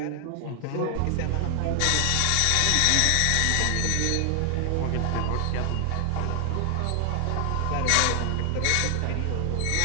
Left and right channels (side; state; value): both; different; correlation 0.00